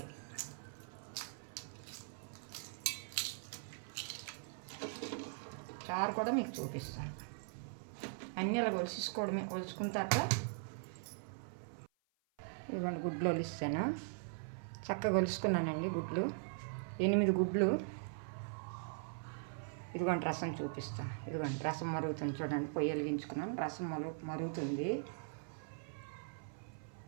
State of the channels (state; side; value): silent; left; 51 dB below the other